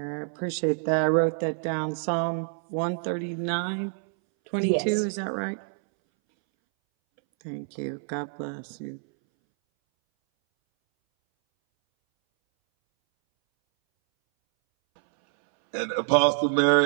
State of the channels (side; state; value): left; silent; 60 dB below the other